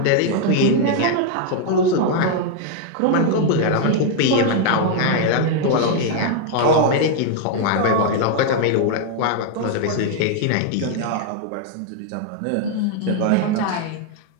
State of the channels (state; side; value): different; both; correlation 0.00